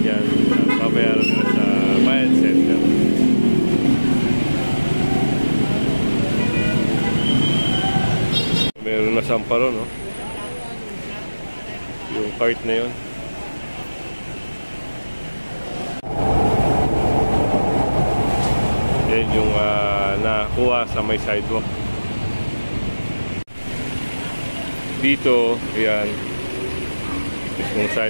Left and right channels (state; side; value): inverted; both; correlation -1.00